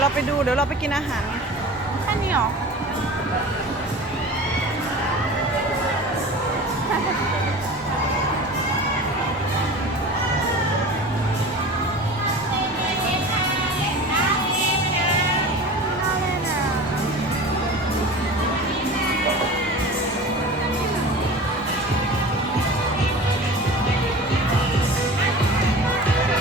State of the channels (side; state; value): both; normal; correlation 0.36